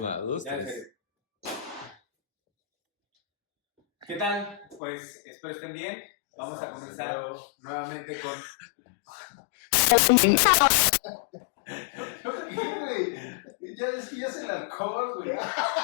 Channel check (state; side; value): drops out; right; at 4.8 s